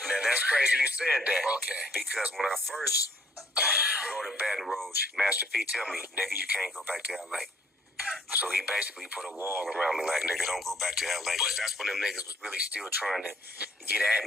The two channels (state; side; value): normal; both; correlation 0.63